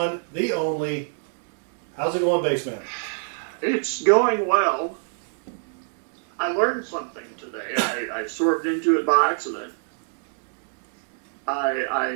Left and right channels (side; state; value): left; silent; digital silence